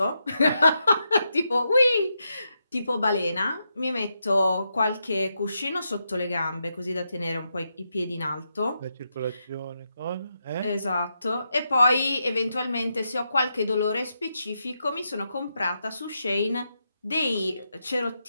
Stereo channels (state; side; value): inverted; both; correlation -0.84